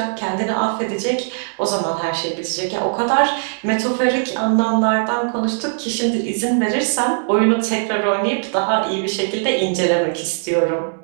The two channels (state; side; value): silent; left; digital silence